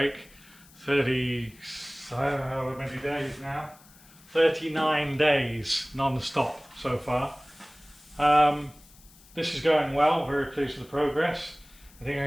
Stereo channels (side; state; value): left; noise; hiss, 25 dB below the sound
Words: I don't know how many days now. 39 days non-stop so far. This is going well, very pleased with the progress. I think